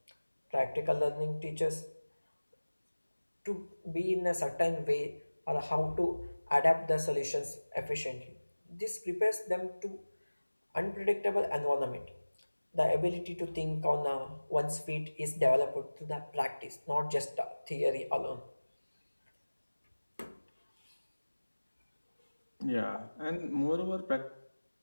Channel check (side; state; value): both; inverted; correlation -1.00